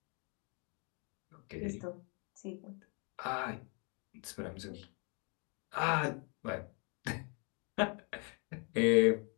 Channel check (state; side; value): quieter; right; 36.7 dB